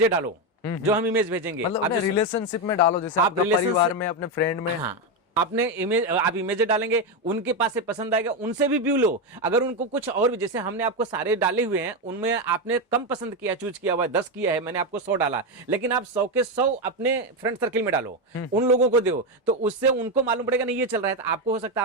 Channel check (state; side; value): normal; both; correlation 0.09